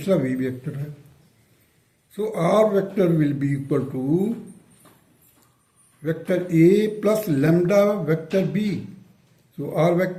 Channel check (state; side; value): identical; both; correlation 1.00